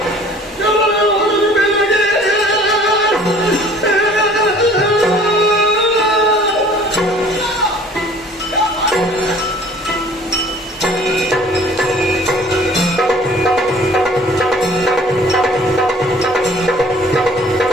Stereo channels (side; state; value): both; normal; correlation 0.52